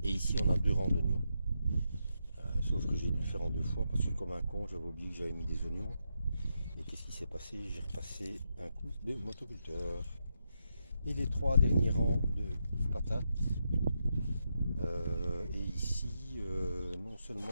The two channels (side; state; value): both; inverted; correlation -0.83